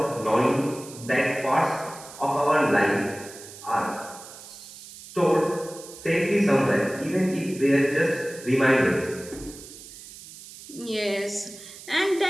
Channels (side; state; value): right; noise; hiss, 16 dB below the sound